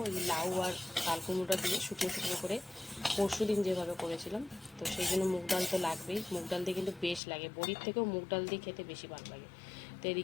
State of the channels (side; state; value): right; drops out; at 7.2 s